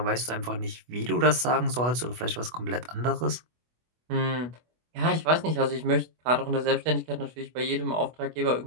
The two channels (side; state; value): left; late; 24 ms